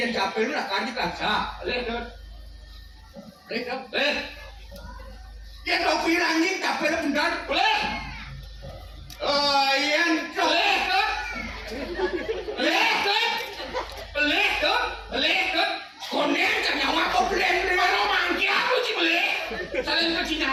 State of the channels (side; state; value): both; identical; correlation 1.00